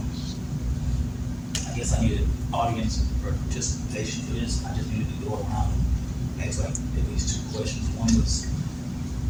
I guess I needed audience participation for this. I just needed to go around and ask like at least two questions. One was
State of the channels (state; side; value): identical; both; correlation 1.00